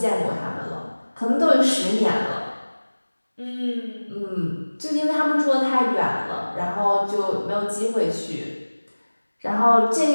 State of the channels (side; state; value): both; inverted; correlation -1.00